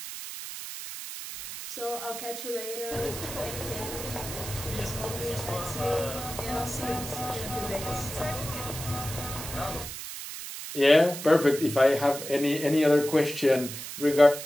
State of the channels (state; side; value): noise; right; hiss, 9 dB below the sound